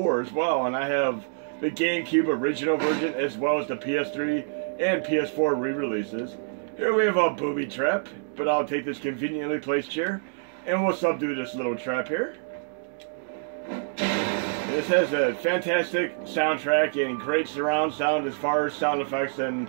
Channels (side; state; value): left; silent; digital silence